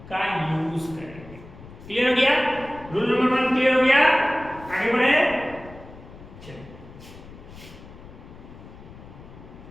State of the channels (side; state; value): left; noise; rumble, 18 dB below the sound